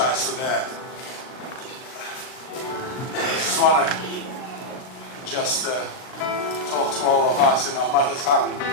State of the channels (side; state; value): right; late; 38 ms